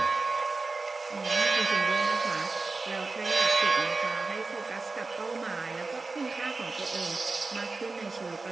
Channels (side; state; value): left; quieter; 3.8 dB